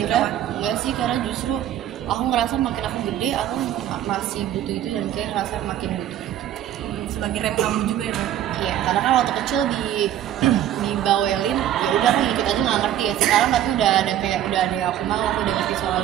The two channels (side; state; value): left; quieter; 11.5 dB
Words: enggak sih, karena justru aku ngerasa makin aku gede aku masih butuh itu, dan kayak ngerasa makin butuh itu. Sebagai rem kamu juga ya? Iya, karena kan waktu kecil dibawelin, ya udah aku ikut aja nggak ngerti ya. Sekarang tapi udah ada yang aku mau, aku udah ngerti soal